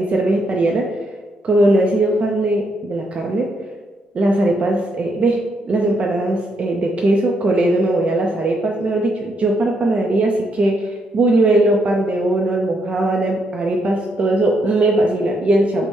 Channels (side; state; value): both; normal; correlation 0.77